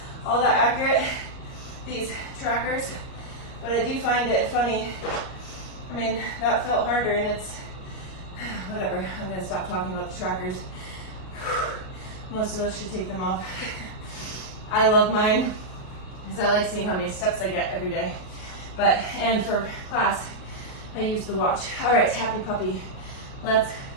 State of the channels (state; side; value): late; right; 38 ms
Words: all that accurate, these trackers, but I do find it funny. I mean, that felt harder and it's, whatever, I'm gonna stop talking about the trackers. Most of us should take them off. I love mine because I like seeing how many steps I get every day. And for class, I use the watch. All right, happy puppy. Let's